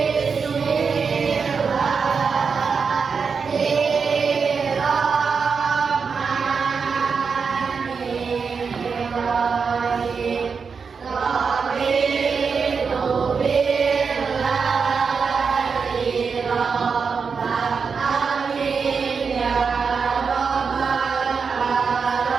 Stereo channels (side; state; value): left; quieter; 5.5 dB